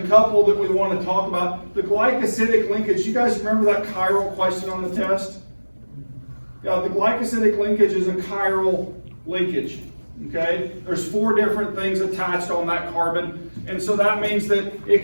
that we want to talk about. The glycosidic linkage, you guys remember that chiral question on the test? Yeah, the glycosidic linkage is a chiral linkage. Okay? There's 4 different things attached on that carbon, and so that means that it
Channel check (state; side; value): inverted; both; correlation -1.00